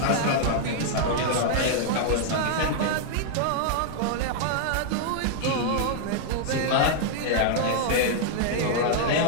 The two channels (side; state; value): both; different; correlation -0.01